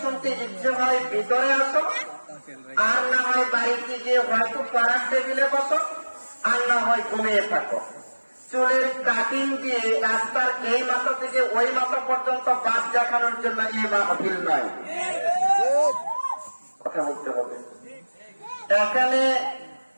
শুনতে ইচ্ছে হয় ভিতরে আসো, আর না হয় বাড়িতে গিয়ে হয়তো পাড়ার টেবিলে বসো, আর না হয় ঘুমিয়ে থাকো। চুলের কাটিং দিয়ে রাস্তার এই মাথা থেকে ওই মাথা পর্যন্ত বাস দেখানোর জন্য এই মাহফিল নয়। কথা বলতে হবে। এখানে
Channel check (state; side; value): inverted; both; correlation -1.00